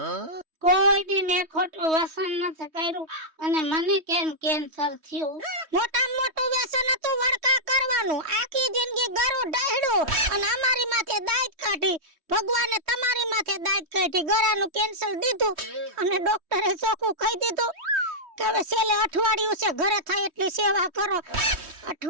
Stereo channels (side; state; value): left; late; 3.2 ms